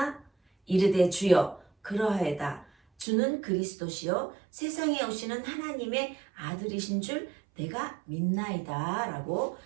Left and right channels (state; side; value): drops out; left; at 3.1 s